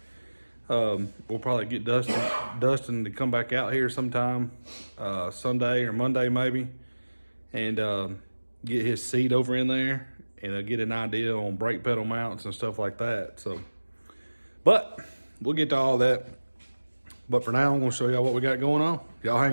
We'll probably get Dustin to come back out here sometime Sunday or Monday maybe, and get his seat over in there, and get an idea on brake pedal mounts and stuff like that. So, but we'll get to all that. But for now, I'm gonna show y'all what we got going on. Y'all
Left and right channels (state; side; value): inverted; both; correlation -1.00